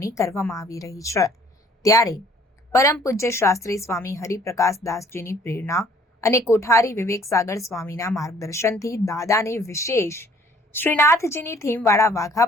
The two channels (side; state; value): both; normal; correlation 0.57